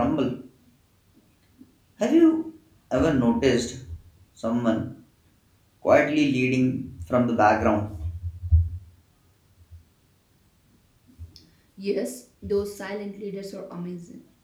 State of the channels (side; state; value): both; identical; correlation 1.00